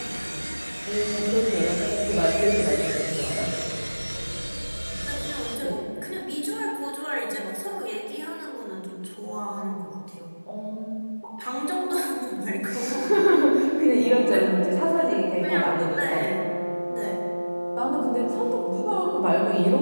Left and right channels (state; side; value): inverted; both; correlation -1.00